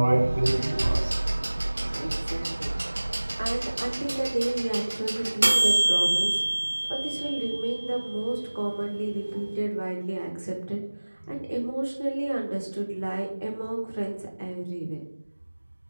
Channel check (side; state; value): both; inverted; correlation -1.00